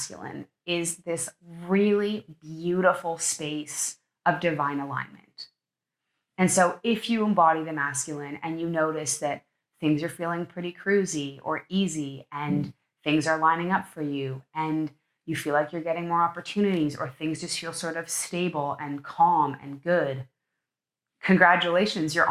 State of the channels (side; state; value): both; identical; correlation 1.00